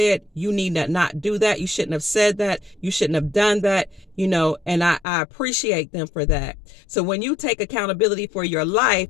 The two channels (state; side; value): drops out; right; at 5.1 s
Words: you need to not do that. You shouldn't have said that. You shouldn't have done that, and I appreciate them for that. So when you take accountability for your life,